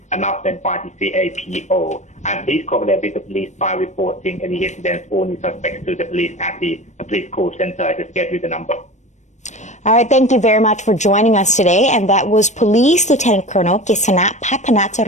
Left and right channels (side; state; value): right; late; 0.34 ms